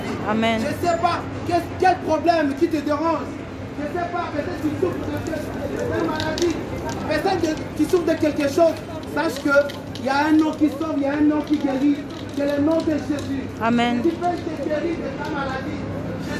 vie. Amen. Je ne sais pas quel problème qui te dérange. Je ne sais pas, peut-être tu souffres de maladie. Peut-être tu souffres de quelque chose. Sache qu'il y a un nom qui sauve, il y a un nom qui guérit. C'est le nom de Jésus. Amen. Jésus peut te guérir de ta maladie.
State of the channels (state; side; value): identical; both; correlation 1.00